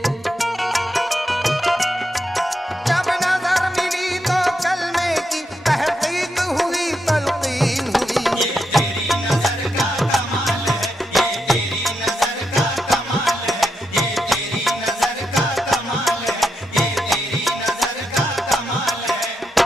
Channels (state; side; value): normal; both; correlation 0.83